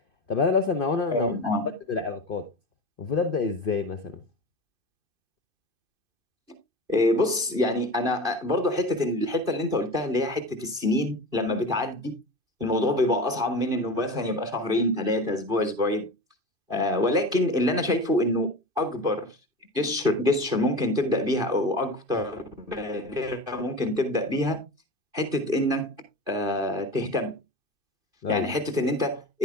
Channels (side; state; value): left; late; 2.5 ms